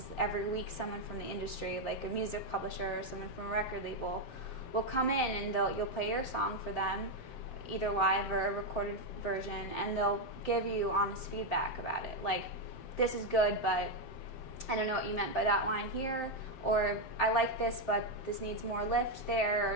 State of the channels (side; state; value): right; late; 7.7 ms